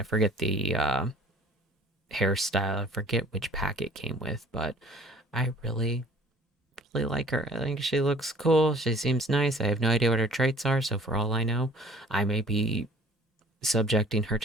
forget the hairstyle. I forget which pack it came with, but I really like her. I think she looks cool. She seems nice. I have no idea what her traits are, so for all I know, I may be subjecting her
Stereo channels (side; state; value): both; normal; correlation 0.52